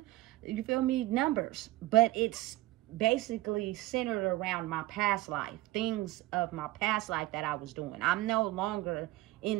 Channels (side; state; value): left; quieter; 18.0 dB